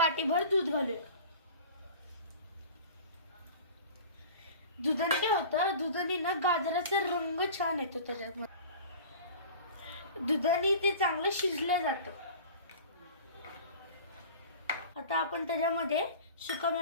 दूध घालूया। दुधाने काय होतं, दुधाने ना गाजराचा रंग छान येतो त्याच्यात, दुधाने ते चांगलं शिजलं जातं। आता आपण त्याच्यामध्ये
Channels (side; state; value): both; inverted; correlation -0.40